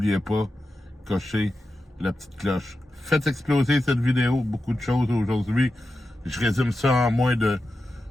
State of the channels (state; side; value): normal; both; correlation 0.91